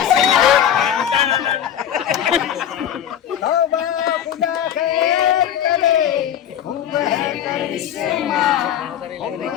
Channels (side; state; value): right; quieter; 9.8 dB